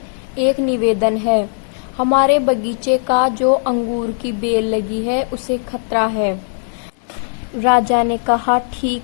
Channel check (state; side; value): silent; right; 63 dB below the other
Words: एक निवेदन है। हमारे बगीचे का जो अंगूर की बेल लगी है उसे खतरा है। राजा ने कहा,